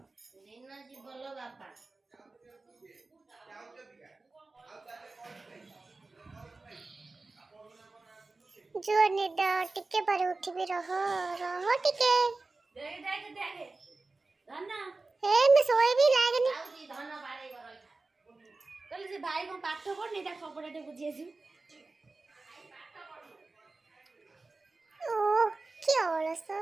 जो निद टिके पर उठबी रह रह टिके देख देख देख धन हे मैं सोई भी लागनी आउजी धन बारे बर कल से भाई को पाठ पढ़नी ता खबरटे बुझी आसी ओ क्या ओलस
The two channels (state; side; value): quieter; left; 3.5 dB